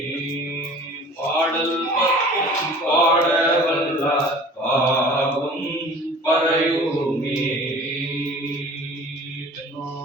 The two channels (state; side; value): normal; both; correlation 0.45